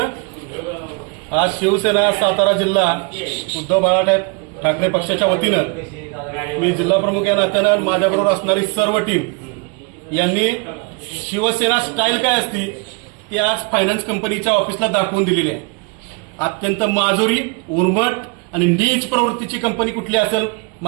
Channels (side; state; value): left; quieter; 32.5 dB